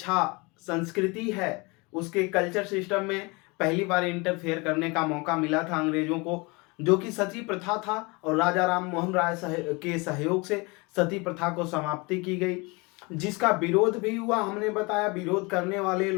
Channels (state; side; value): quieter; right; 27.1 dB